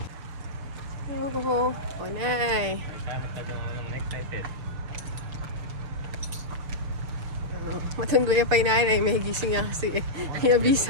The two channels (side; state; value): left; late; 6.8 ms